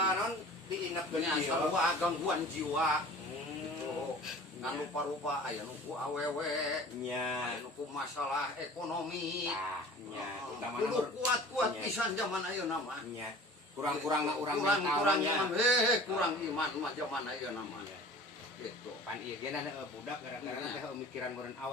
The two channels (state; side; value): normal; both; correlation 0.43